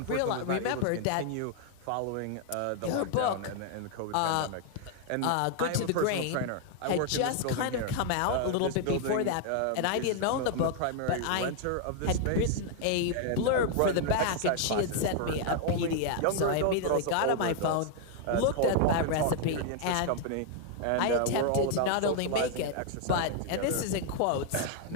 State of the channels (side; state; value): both; different; correlation 0.00